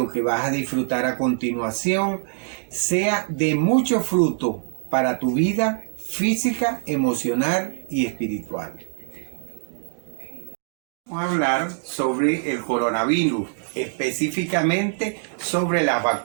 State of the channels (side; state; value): left; silent; digital silence